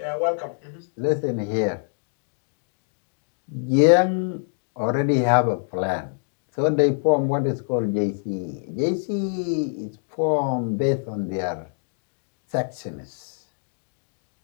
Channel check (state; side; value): silent; right; digital silence